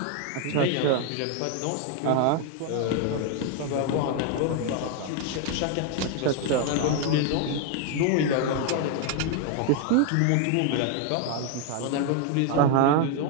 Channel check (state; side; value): different; both; correlation 0.00